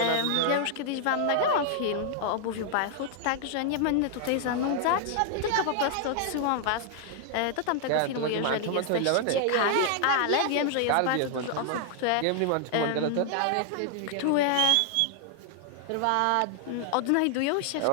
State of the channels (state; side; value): different; both; correlation 0.00